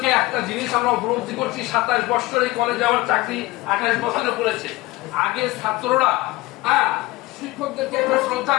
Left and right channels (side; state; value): right; quieter; 19.9 dB